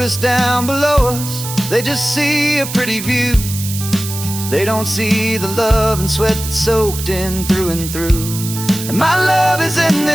down below us, they just see a pretty view. They don't see the love and sweat that's soaked in through and through. And my love is in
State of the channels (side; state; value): right; noise; hiss, 8 dB below the sound